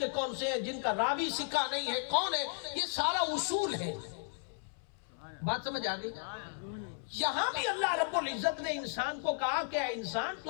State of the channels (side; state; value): right; silent; 55 dB below the other